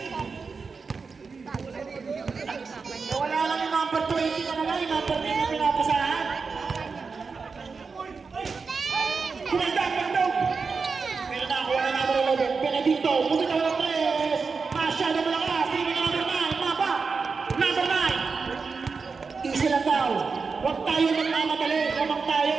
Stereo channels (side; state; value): left; quieter; 4.9 dB